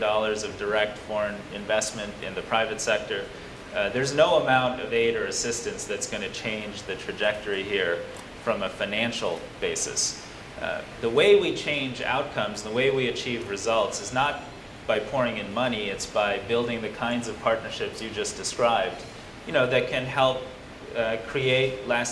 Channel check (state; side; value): identical; both; correlation 1.00